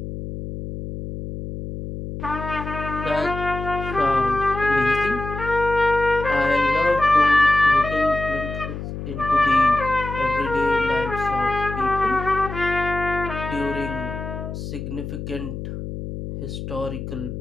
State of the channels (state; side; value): noise; left; hum, 8 dB below the sound